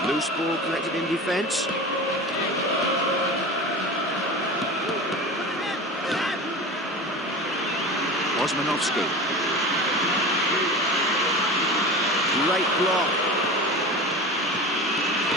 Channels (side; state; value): both; normal; correlation 0.31